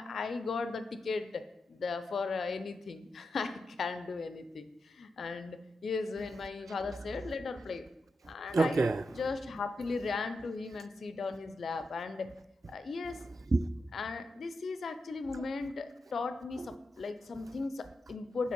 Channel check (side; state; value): both; normal; correlation 0.87